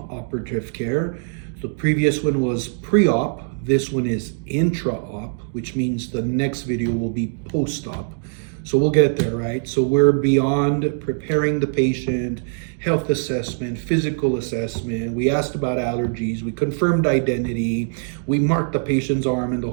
care. The previous one was pre-op. This one is intra-op, which means the next video will be post-op. So we'll get there, right? So we're beyond preparing the patient, health assessment, physical assessment. We asked about allergies. We confirmed identity. We marked the patient's arm and the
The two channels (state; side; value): silent; left; digital silence